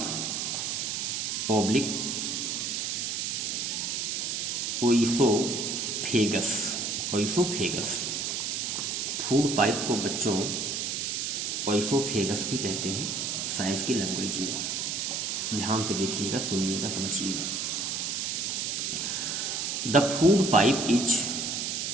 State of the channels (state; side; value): noise; right; hiss, 1 dB below the sound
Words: oblique oesophagus. Food pipe को बच्चों ओइसोफेगस भी कहते हैं साइंस की लैंग्वेज में। ध्यान पे देखिएगा, सुनिएगा, समझिएगा। द फूड पाइप इज,